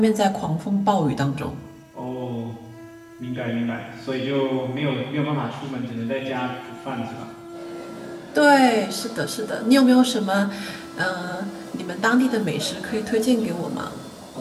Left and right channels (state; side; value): identical; both; correlation 1.00